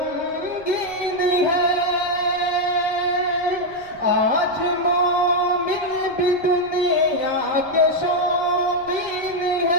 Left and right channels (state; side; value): noise; right; rumble, 25 dB below the sound